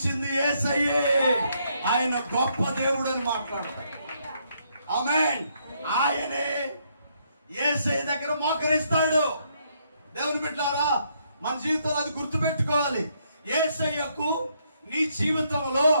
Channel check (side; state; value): both; inverted; correlation -0.73